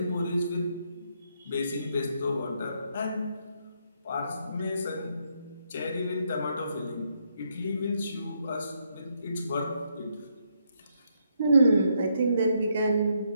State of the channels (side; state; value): both; inverted; correlation -0.76